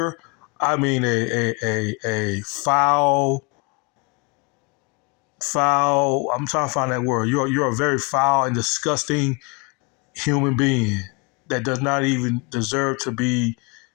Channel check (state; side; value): quieter; right; 29.9 dB